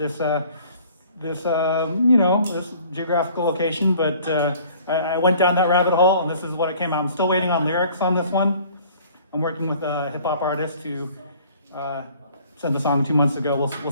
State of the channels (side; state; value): both; inverted; correlation -0.53